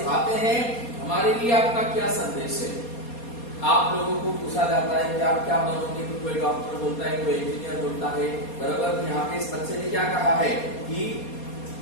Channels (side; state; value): right; late; 4.2 ms